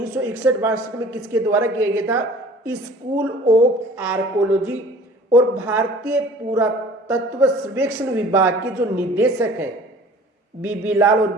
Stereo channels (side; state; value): both; normal; correlation 0.47